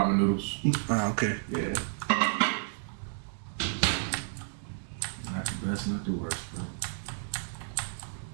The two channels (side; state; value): left; silent; digital silence